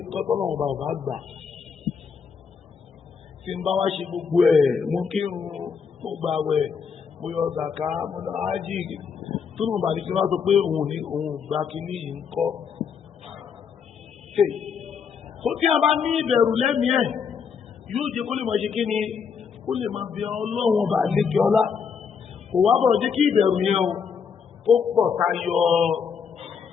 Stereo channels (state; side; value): quieter; right; 6.3 dB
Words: tọ́tọ́ náà ọba ọba gbà tí ń bá wá ṣe gbogbo ẹ̀ mú kírun mo gbààwẹ̀ mo yọ zàká mo lọ ájì tó nù bàbí tí wọ́n sọ pé òun gba kínní yìí ń kọ́. tó tí a bá ní ìbẹ̀rù lẹ́mìí ẹ̀ yóò jẹ́ kó lè máa ṣe kí ni kó lè máa bẹ ọlọ́run ọba lékè ọlá kò wá bọ̀ jẹ́ kí ìbẹ̀rù yẹn o ó pọ̀ tayọ